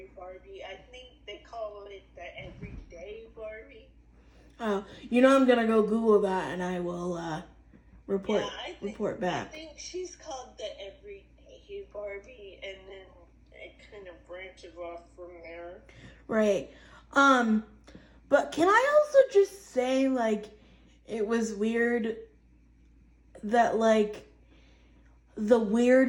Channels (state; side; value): identical; both; correlation 1.00